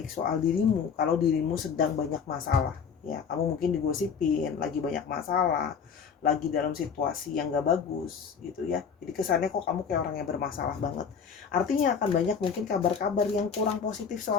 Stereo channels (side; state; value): right; quieter; 6.5 dB